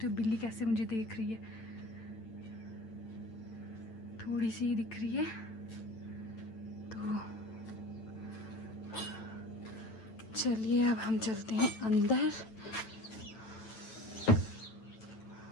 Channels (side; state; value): right; late; 9.0 ms